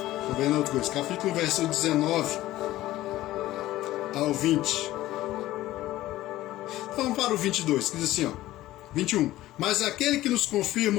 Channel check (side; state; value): right; quieter; 15.8 dB